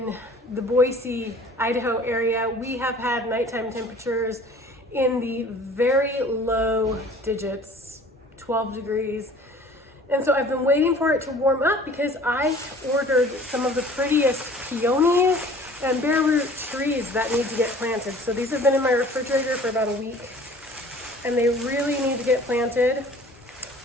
the Boise, Idaho area. We have had nighttime temperatures in the very low digits, 12 degrees. And so I've been waiting for it to warm up because I ordered some of the prettiest peonies and bare root trees that need to get planted. So these have been in my refrigerator for about a week and they really need to get planted.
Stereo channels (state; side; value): normal; both; correlation 0.49